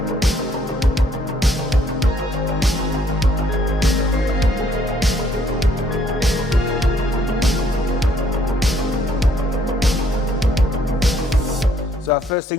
So our first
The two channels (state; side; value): normal; both; correlation 0.65